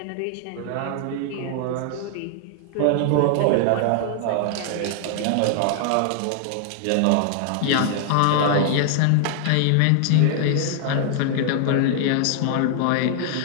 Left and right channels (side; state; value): both; different; correlation 0.00